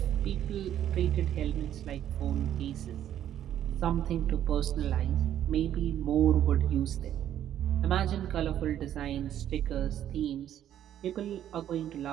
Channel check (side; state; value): left; quieter; 11.0 dB